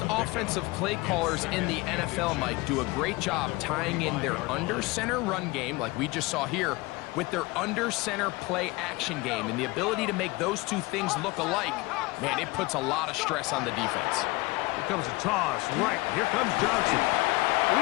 offensive play callers in the NFL, Mike, do a great job tying in their under-center run game, like we just saw here, with their under-center play action game. And the ability to make those two things look alike, man, it puts a lot of stress on the defense. Here comes a toss. Right, here comes Johnson.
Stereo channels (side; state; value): right; quieter; 22.5 dB